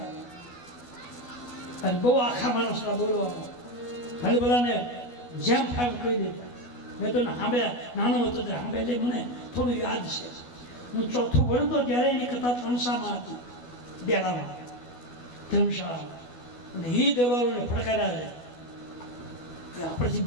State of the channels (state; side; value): late; right; 12 ms